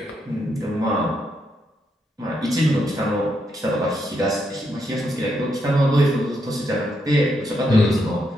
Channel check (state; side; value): normal; both; correlation 0.79